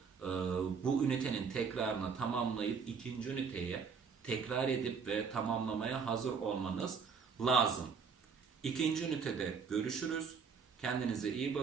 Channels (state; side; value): quieter; left; 5.8 dB